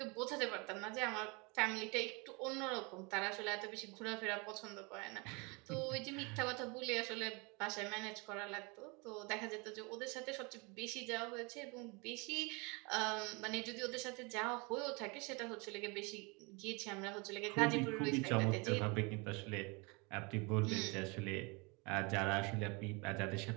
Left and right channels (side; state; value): left; quieter; 29.1 dB